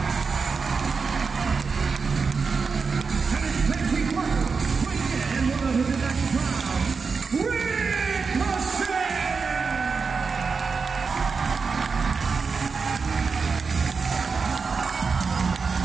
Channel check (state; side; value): quieter; left; 5.0 dB